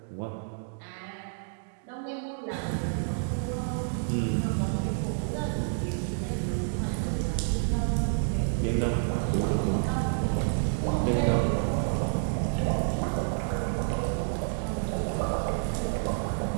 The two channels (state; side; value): silent; left; digital silence